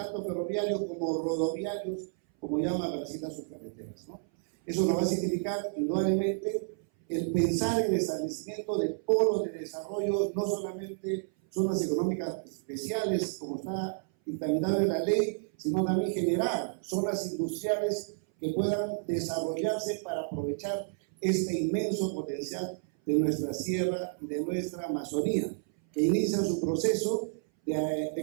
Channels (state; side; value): silent; left; 57 dB below the other